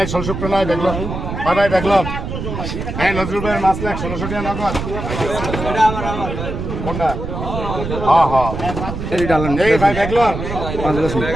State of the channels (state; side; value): noise; right; rumble, 5 dB below the sound